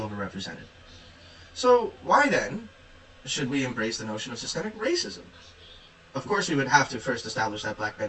So why then should we embrace the notion of systemic racism? Of course, we would have to first establish that black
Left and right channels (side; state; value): both; identical; correlation 1.00